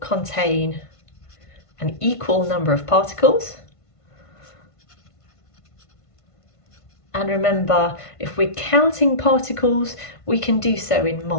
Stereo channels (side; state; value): right; late; 1.5 ms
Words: contain an equal number of particles. And remember, if we're counting particles, we can do so in